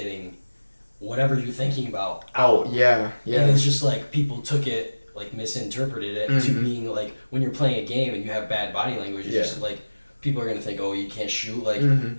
whatever you're thinking about out. Oh yeah. And it's just like people took it, like misinterpreted it to being like when you're playing a game and you have bad body language, it's just like people are gonna think, oh, you can't shoot, like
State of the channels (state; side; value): inverted; both; correlation -1.00